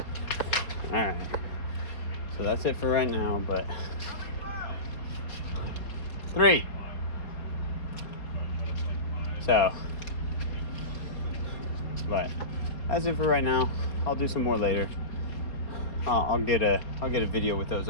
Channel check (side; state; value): right; late; 4.5 ms